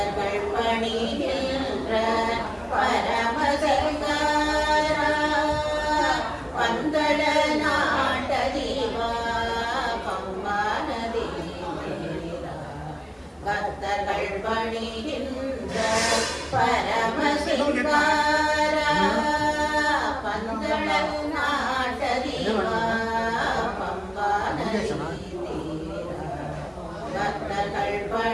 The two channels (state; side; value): identical; both; correlation 1.00